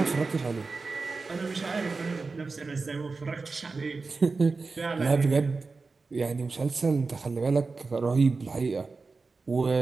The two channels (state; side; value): quieter; left; 4.1 dB